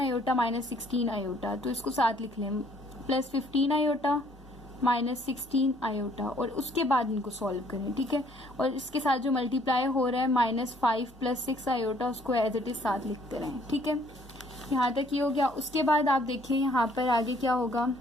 -16 आयोटा, तो इसको साथ लिख लें, प्लस 15 आयोटा -16 आयोटा, और उसके बाद इनको सॉल्व करें। ठीक है, और इसके साथ जो मल्टीप्लाई हो रहा है -5 प्लस 6 आयोटा, उसको एज इट इज साथ लिखते रहें। ठीक है, यहाँ तक ये हो गया। उसके बाद आप देखिए यहाँ पर आगे क्या होगा,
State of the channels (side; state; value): both; normal; correlation 0.62